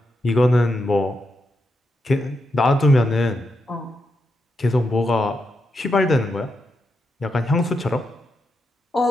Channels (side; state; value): both; normal; correlation 0.84